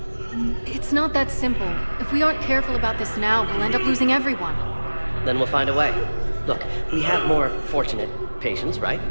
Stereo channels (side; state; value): both; inverted; correlation -1.00